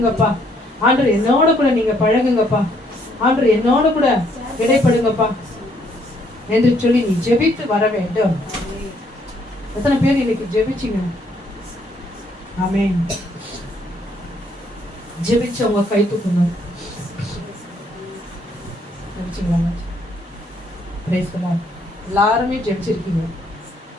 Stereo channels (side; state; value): both; normal; correlation 0.68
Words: ஆண்டவர், என்னோட கூட நீங்க பழகுங்கப்பா. ஆண்டவர், என்னோட கூட இடைப்படுங்கப்பா என்று சொல்லி நீ ஜெபித்து வர வேண்டும். எத்தனை பேர் இன்னைக்கு ஜெபிச்சிங்க? ஆமென். ஜெபிச்சவங்க கை தூக்குங்க. ஜெபிச்சிங்களா? Praise the Lord. எல்லாருமே ஜெபிச்சிருக்கீங்க.